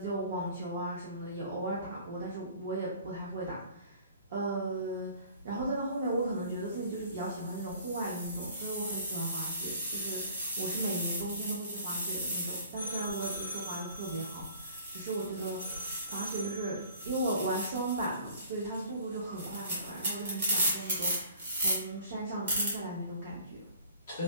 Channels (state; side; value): inverted; both; correlation -0.50